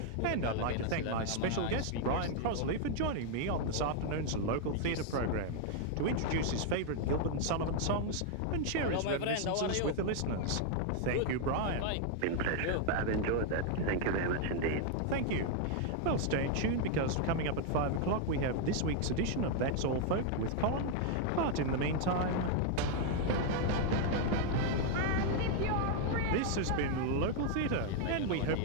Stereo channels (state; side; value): different; both; correlation 0.00